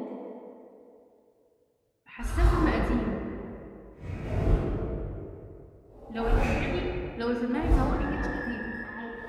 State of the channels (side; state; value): both; identical; correlation 1.00